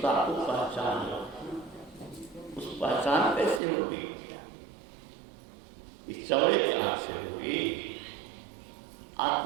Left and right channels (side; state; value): left; drops out; at 3.6 s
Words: को पहचान लो। उस पहचान कैसे होगी? इस चौड़े के आंख से होगी,